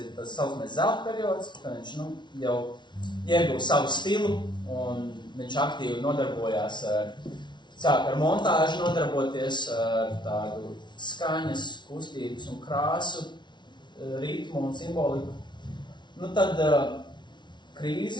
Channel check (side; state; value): right; late; 0.22 ms